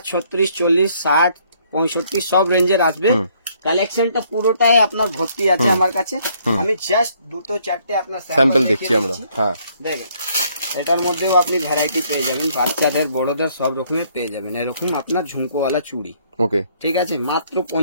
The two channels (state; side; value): inverted; both; correlation -0.66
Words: 36, 40, 60, 65 সব রেঞ্জের আসবে। কালেকশনটা পুরোটাই আপনার ভর্তি আছে আমার কাছে। আমি জাস্ট 2-4টে আপনার স্যাম্পল দেখছি আমরা। দেখেন এটার মধ্যেও আপনি ভ্যারাইটি পেয়ে যাবেন, বাচ্চাদের বড়দের সব রকমের পেয়ে যাবেন। এরকম আপনার ঝুমকোওয়ালা চুড়ি। ঠিক আছে, মাত্র